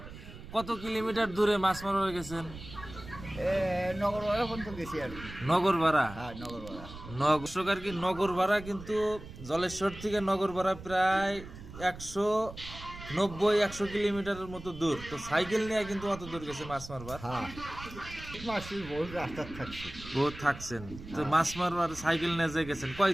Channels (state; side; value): noise; right; rumble, 14 dB below the sound